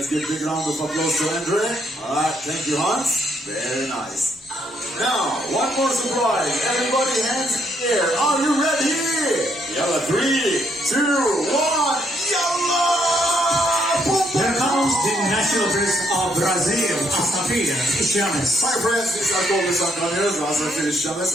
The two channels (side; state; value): both; normal; correlation 0.73